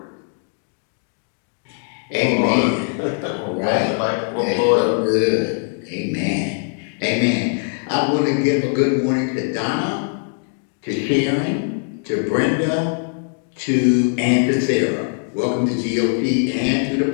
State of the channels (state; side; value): silent; right; 64 dB below the other